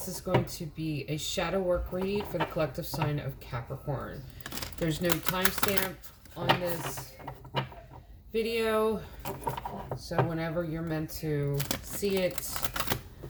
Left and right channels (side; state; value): both; identical; correlation 1.00